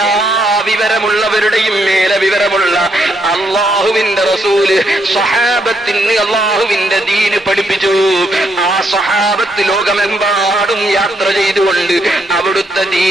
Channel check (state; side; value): normal; both; correlation 0.76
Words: വിവരമുള്ളവരുടെയും മേലെ വിവരമുള്ള അല്ലാഹുവിന്റെ റസൂല് സ്വഹാബത്തിന് അല്ലാഹുവിന്റെ ദീന് പഠിപ്പിച്ചു. ആ സ്വഹാബത്ത് ലോകമെമ്പാടും യാത്ര ചെയ്തുകൊണ്ട് അവിടുത്തെ